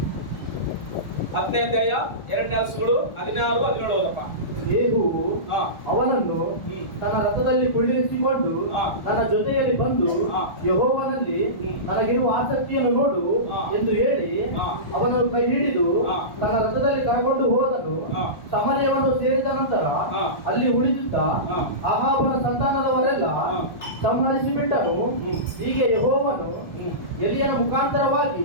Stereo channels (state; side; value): late; right; 1.4 ms